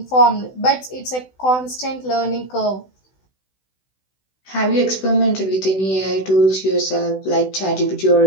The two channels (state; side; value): late; right; 16 ms